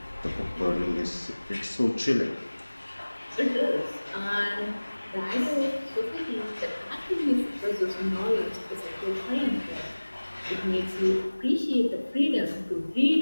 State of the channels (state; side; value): inverted; both; correlation -1.00